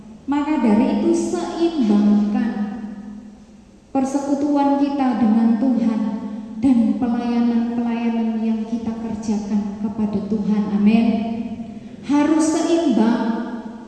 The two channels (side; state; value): both; identical; correlation 1.00